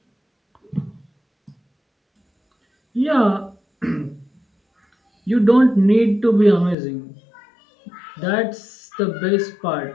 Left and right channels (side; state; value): right; drops out; at 6.8 s